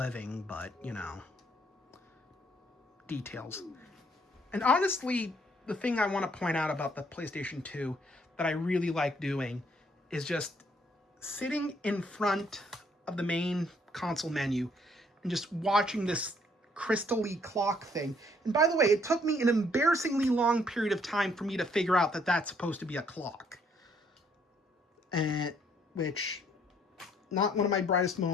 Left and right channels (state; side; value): normal; both; correlation 0.66